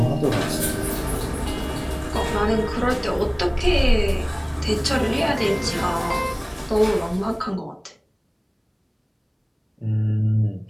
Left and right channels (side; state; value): both; identical; correlation 1.00